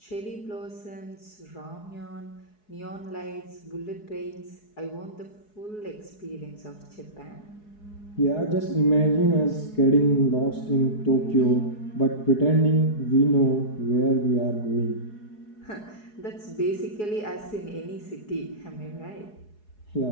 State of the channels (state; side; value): late; right; 4.7 ms